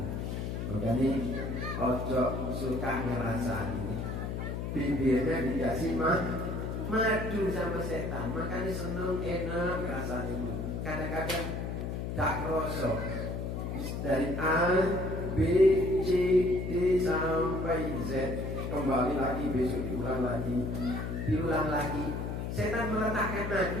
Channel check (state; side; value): noise; left; hum, 3 dB below the sound